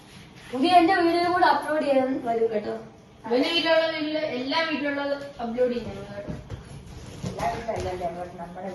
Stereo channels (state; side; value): identical; both; correlation 1.00